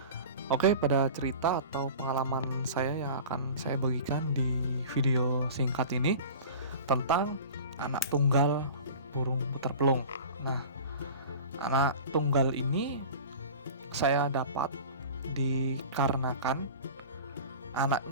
Oke, pada cerita atau pengalaman saya yang akan saya bagikan di video singkat ini tentang anak tunggal burung puter pelung. Nah, anak tunggal ini saya dapat dikarenakan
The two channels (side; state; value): both; inverted; correlation -0.37